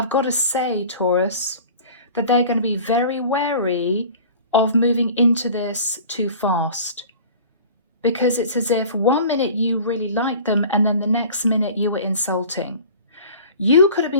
got to say, Taurus, that they're going to be very wary of moving into this too fast. Because it's as if 1 minute you really liked them and then the next minute you were insulting. You could have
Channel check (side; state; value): both; inverted; correlation -0.43